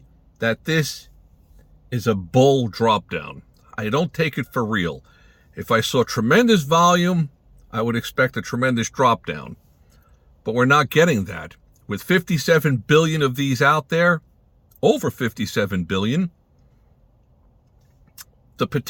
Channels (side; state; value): both; identical; correlation 1.00